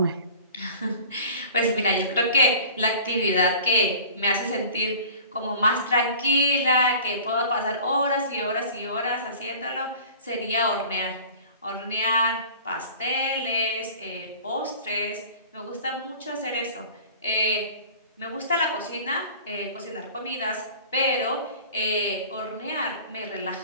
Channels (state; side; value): inverted; both; correlation -0.43